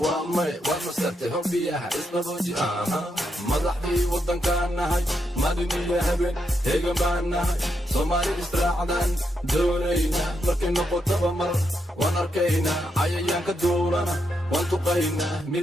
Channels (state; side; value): normal; both; correlation 0.81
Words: waa may waad masartay hobbiyaha isbabooji madaxdii waddankaan nahay maalin iyo habeen heegan baan nahay soomaali israacdaan doonayna markay noqotaba mar waan arkaynaa cayayaanka duulana waan tuqaynaa